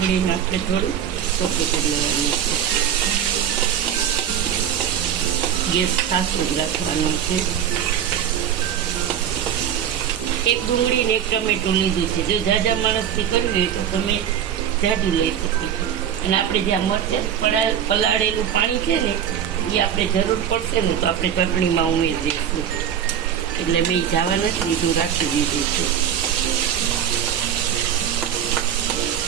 આપણે થોડું ચોખ્ખું કરી લેવાની છે. ગેસ ખાસો જ રાખવાનો છે. એક ડુંગળી ને એક ટમેટું લીધું છે. જો જાજા માણસથી કરવી હોય તો તમે જાડું લઈ શકો છો. અને આપણે જે આ મરચાં પલાળેલું પાણી છે ને એ આપણે જરૂર પડશે ને તો આપણે ચટણીમાં ઉમેરી દઈશું. એટલે મેં જવા નથી દીધું, રાખી દીધું છે.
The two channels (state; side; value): quieter; left; 9.2 dB